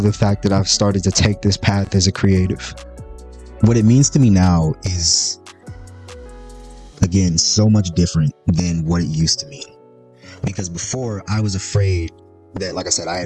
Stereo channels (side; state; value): both; identical; correlation 1.00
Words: the fact that I've started to take this path as a creative. What it means to me now is, again, so much different than what it used to mean. Because before, I was afraid that, like I said, I